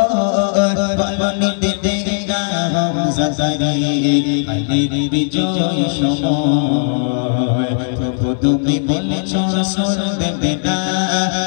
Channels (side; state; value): right; silent; digital silence